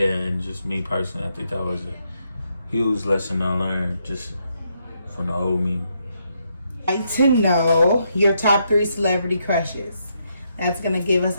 and just me personally, I think that was a huge lesson I learned just from the old me. I'd like to know your top 3 celebrity crushes. That's going to give us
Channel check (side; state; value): both; inverted; correlation -0.78